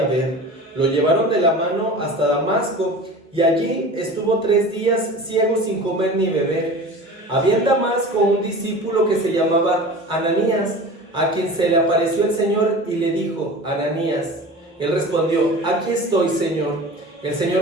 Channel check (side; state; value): both; normal; correlation 0.37